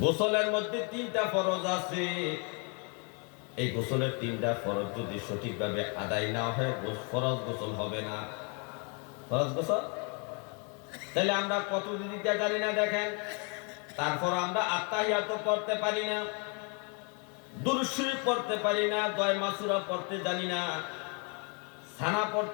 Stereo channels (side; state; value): right; quieter; 35.6 dB